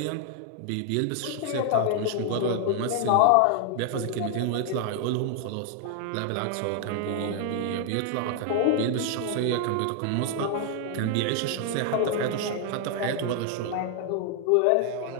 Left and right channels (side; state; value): both; different; correlation 0.00